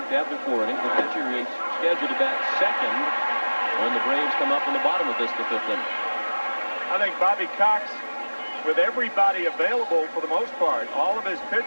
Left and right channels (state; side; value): inverted; both; correlation -1.00